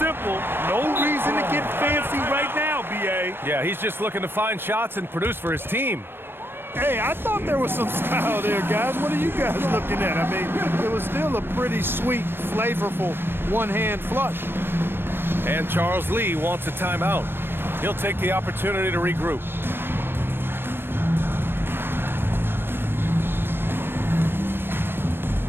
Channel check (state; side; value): late; left; 0.10 ms